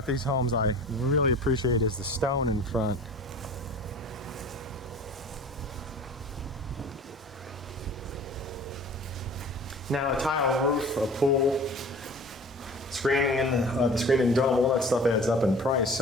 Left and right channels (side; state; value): both; normal; correlation 0.42